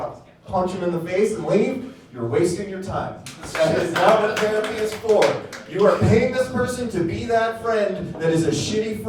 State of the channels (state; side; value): identical; both; correlation 1.00